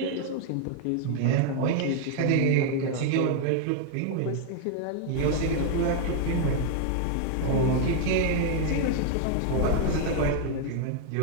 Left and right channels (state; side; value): different; both; correlation 0.00